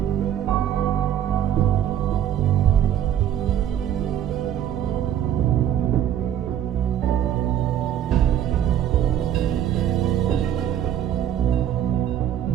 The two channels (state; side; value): quieter; left; 10.4 dB